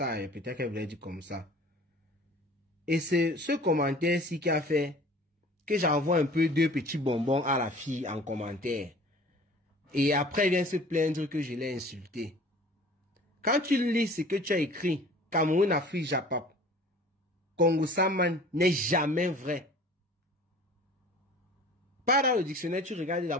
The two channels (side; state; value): both; normal; correlation 0.46